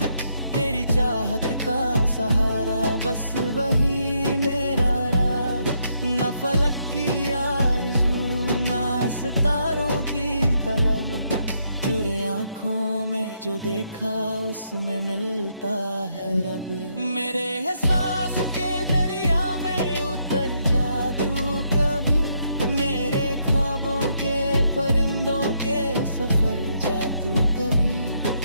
तेरी चाहत का सहारा बस वही मेरा राज। न फलक की आरज़ू ना सितारों की तलब, चुरे आँखों में जो देखा उसमें मिलता है रब। मेरे एहसास के दरिया में उतर जा तू कभी, मेरे ख्वाबों के परिंदों के सफर जा तू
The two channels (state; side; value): inverted; both; correlation -0.76